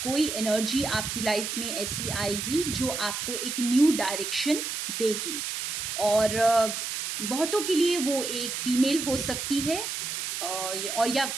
कोई एनर्जी आपकी लाइफ में ऐसी आएगी जो आपको एक न्यू डायरेक्शन देगी। और बहुतों के लिए वो एक फीमेल हो सकती है और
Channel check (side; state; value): right; noise; hiss, 4 dB below the sound